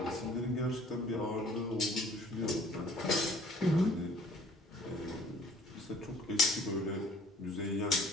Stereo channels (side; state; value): both; normal; correlation 0.55